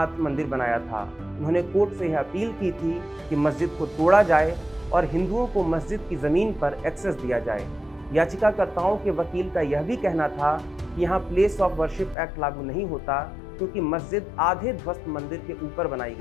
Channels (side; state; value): right; drops out; at 12.2 s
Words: मंदिर बनाया था। उन्होंने कोर्ट से यह अपील की थी कि मस्जिद को तोड़ा जाए और हिंदुओं को मस्जिद की ज़मीन पर एक्सेस दिया जाए। याचिकाकर्ताओं के वकील का यह भी कहना था कि यहाँ प्लेस ऑफ वर्शिप एक्ट लागू नहीं होता, क्योंकि मस्जिद आधे ध्वस्त मंदिर के ऊपर बनाई